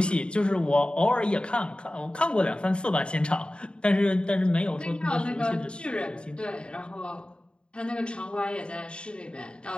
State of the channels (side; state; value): right; late; 0.053 ms